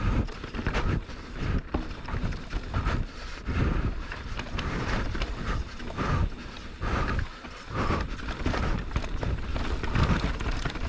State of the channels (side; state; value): both; identical; correlation 1.00